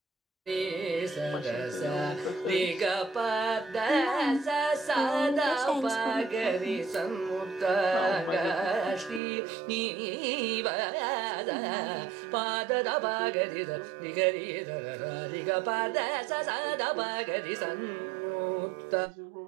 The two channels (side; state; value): left; drops out; at 9.2 s